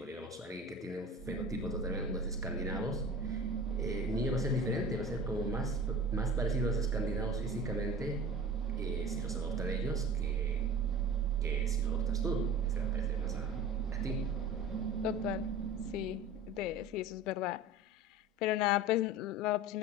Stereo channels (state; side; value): normal; both; correlation 0.36